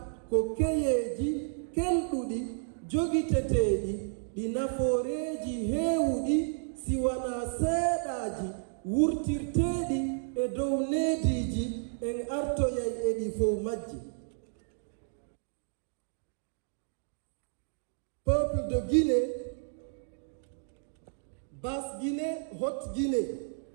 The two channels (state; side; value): silent; left; digital silence